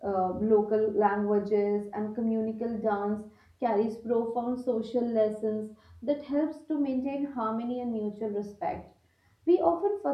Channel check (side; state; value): both; identical; correlation 1.00